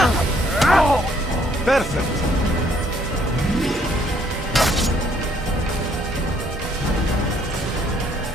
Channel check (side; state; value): both; normal; correlation 0.66